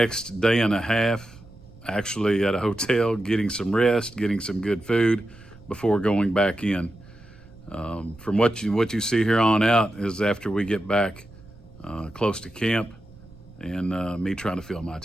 day and a half actually at a hotel, getting some rest, getting some good food before going back in. From what you see here on out is after we get back close to camp and me trying to fill my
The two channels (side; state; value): right; noise; rumble, 22 dB below the sound